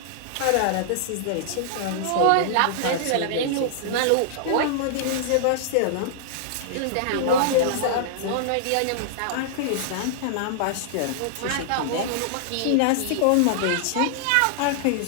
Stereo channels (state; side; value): different; both; correlation -0.01